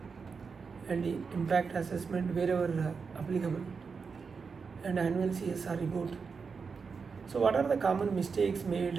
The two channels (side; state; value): left; quieter; 5.3 dB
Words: and the impact assessment wherever applicable, and annual CSR report. So what are the common mistakes